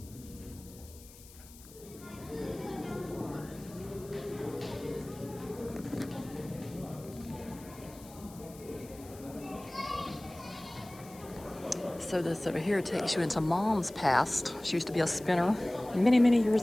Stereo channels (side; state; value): left; noise; hiss, 20 dB below the sound